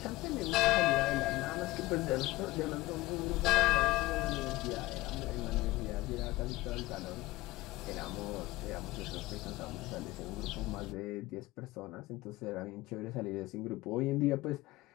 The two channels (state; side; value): quieter; right; 18.5 dB